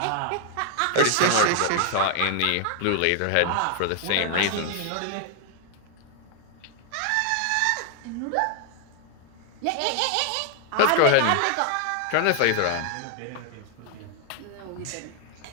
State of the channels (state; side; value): different; both; correlation 0.00